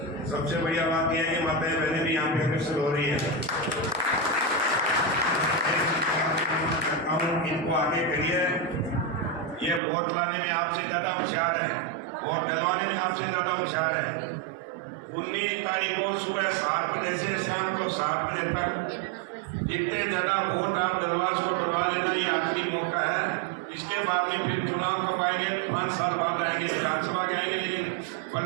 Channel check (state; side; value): drops out; left; at 9.8 s